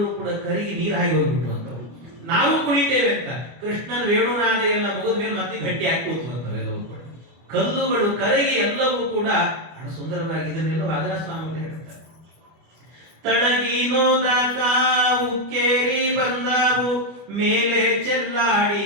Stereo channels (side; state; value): left; late; 25 ms